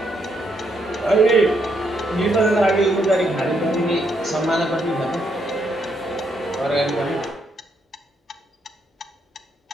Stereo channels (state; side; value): normal; both; correlation 0.76